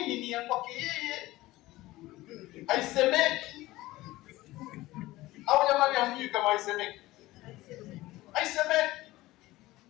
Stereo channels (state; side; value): quieter; right; 18.0 dB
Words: ni ya kwake yeye, haisemeki. Au jamani hamjui kama haisemeki? Haisemeki.